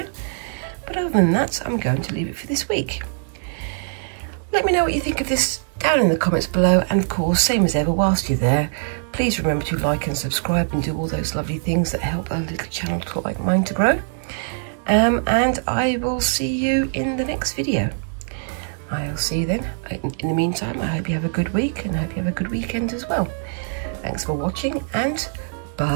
But other than that, I'm going to leave it for this week. Let me know what you think of this down in the comments below. And of course, same as ever, whilst you're there, please remember to like and subscribe and do all those lovely things that help a little channel like mine to grow. And I will see you in the next video. I'll see you then. In the meantime, I hope you have a good week and I hope you have a good weekend as well. Thanks for watching and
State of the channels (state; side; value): silent; left; digital silence